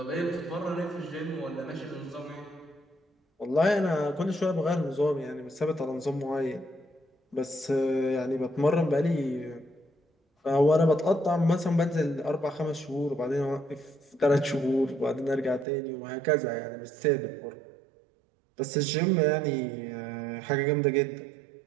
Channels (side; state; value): left; drops out; at 15.7 s